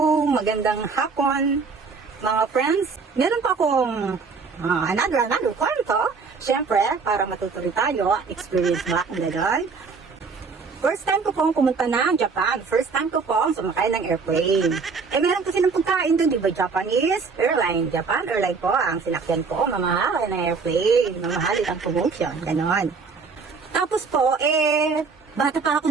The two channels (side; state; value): left; quieter; 4.9 dB